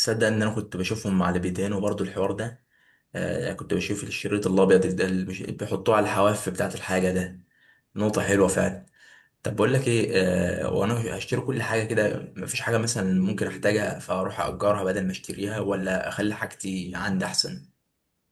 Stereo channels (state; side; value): identical; both; correlation 1.00